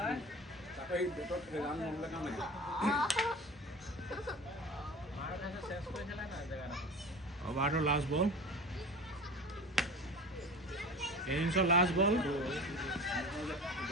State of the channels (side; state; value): both; normal; correlation 0.36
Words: অভাৰটোৰ লাষ্ট বল ইনিংছৰ লাষ্ট বল